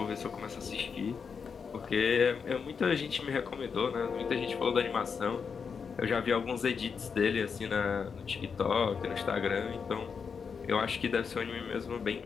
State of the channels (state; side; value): quieter; right; 6.0 dB